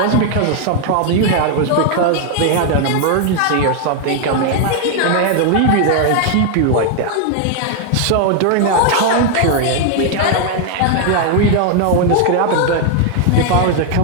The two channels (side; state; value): both; different; correlation 0.00